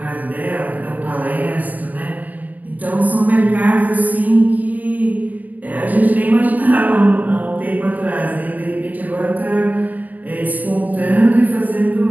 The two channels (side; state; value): left; late; 0.078 ms